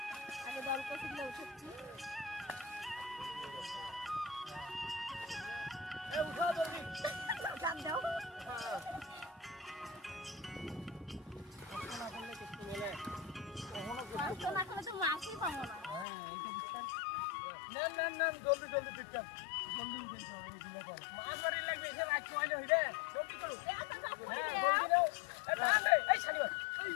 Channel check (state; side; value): drops out; right; at 16.1 s